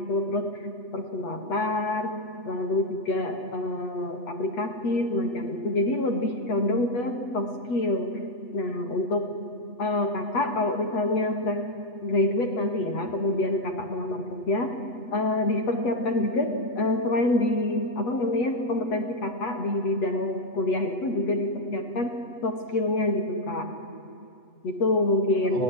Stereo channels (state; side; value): late; right; 8.2 ms